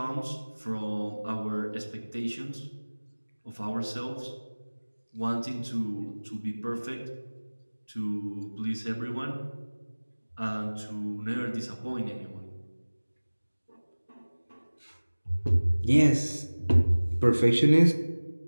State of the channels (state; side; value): inverted; both; correlation -1.00